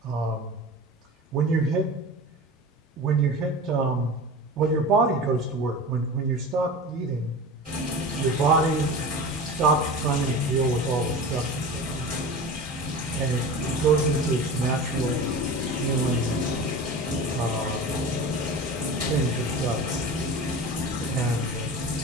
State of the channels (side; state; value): both; normal; correlation 0.33